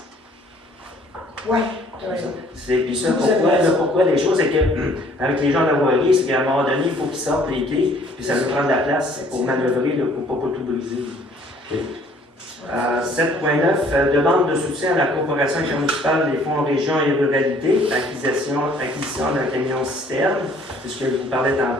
Ouais, tu as raison. Puis ça, pourquoi les choses, c'est que avec les gens de la voirie, c'est qu'à un moment donné, il faut qu'ils sortent les quais, puis ça nous prend de la place pour manœuvrer, là, pour ne pas tout briser. 7.9, demande de soutien à la coopération intermunicipale des fonds région et ruralité, acquisition d'un camion citerne, c'est ce que je vous parlais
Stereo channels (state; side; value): normal; both; correlation 0.58